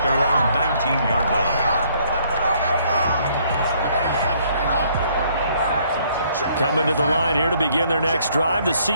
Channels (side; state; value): both; inverted; correlation -0.65